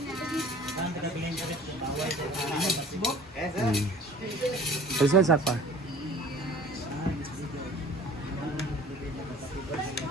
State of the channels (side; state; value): both; normal; correlation 0.47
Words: Isa sa pa.